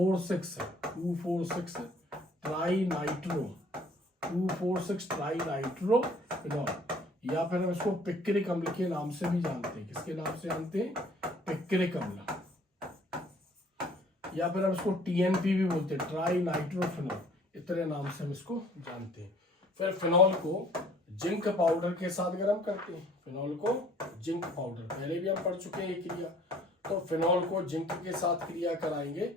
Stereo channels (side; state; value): both; normal; correlation 0.56